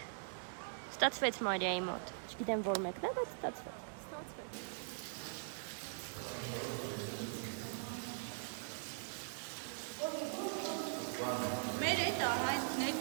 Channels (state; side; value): silent; left; digital silence